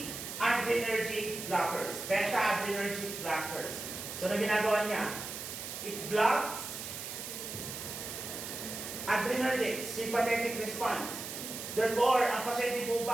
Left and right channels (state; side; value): noise; right; hiss, 7 dB below the sound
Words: adrenergic blockers. Beta adrenergic blockers. So na ginagawa niya? It blocks adrenergic, sympathetic response. Therefore, ang pasyente po